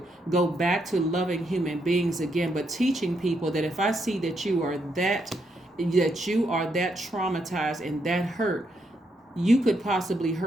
Go back to loving human beings again, but teaching people that if I see that you are that traumatized and that hurt, you could possibly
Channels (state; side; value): normal; both; correlation 0.78